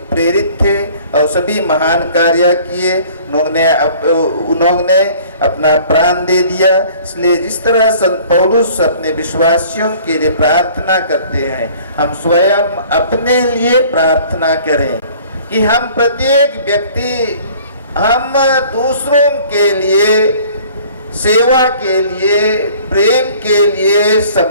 प्रेरित थे और सभी महान कार्य किए। उन्होंने अपना प्राण दे दिया। इसलिए जिस तरह संत पौलुस अपने विश्वासियों के लिए प्रार्थना करते हैं, हम स्वयं अपने लिए प्रार्थना करें कि हम प्रत्येक व्यक्ति, हम दूसरों के लिए, सेवा के लिए, प्रेम के लिए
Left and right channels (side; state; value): both; inverted; correlation -0.52